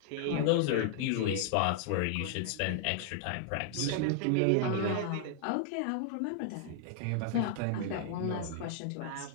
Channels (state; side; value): different; both; correlation 0.00